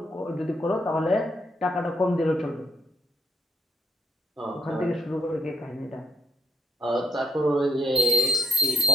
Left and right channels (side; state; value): both; normal; correlation 0.77